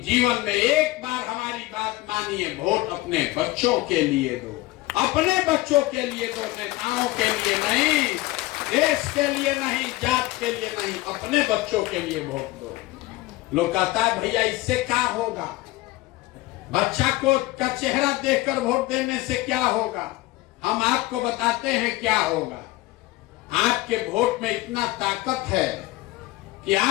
जीवन में एक बार हमारी बात मानिए, वोट अपने बच्चों के लिए दो, अपने बच्चों के लिए दो, नेताओं के लिए नहीं, देश के लिए नहीं, जात के लिए नहीं, अपने बच्चों के लिए वोट दो। लोग कहता है भैया इससे क्या होगा, बच्चा को का चेहरा देखकर वोट देने से क्या होगा। हम आपको बताते हैं क्या होगा। आपके वोट में इतना ताकत है कि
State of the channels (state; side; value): quieter; right; 18.8 dB